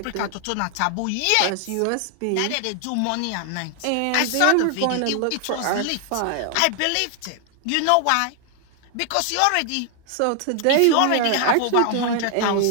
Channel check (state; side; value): different; both; correlation 0.00